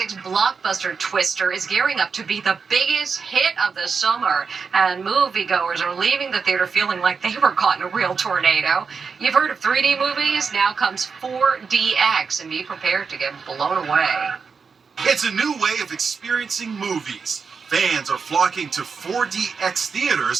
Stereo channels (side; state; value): left; quieter; 5.4 dB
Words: blockbuster Twister is gearing up to be the biggest hit of the summer, and moviegoers are leaving the theater feeling like they were caught in a real tornado. You've heard of 3D movies? Now comes 4DX, and be prepared to get blown away. It's a new way of experiencing movies. Fans are flocking to 4DX